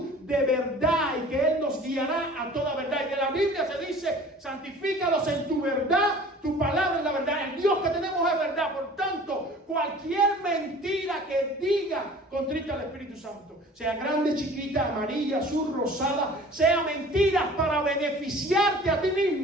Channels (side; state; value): both; normal; correlation 0.46